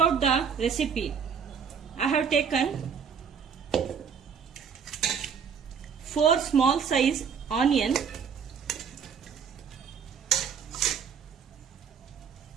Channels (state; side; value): quieter; left; 6.9 dB